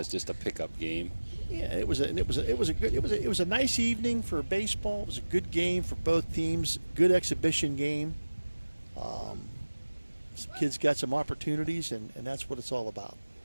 just a pickup game. Yeah, it was a nice evening for baseball. It was a good game for both teams. Good exhibition game. Some kids got some opportunities, and that's what it's all about.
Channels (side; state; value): both; inverted; correlation -1.00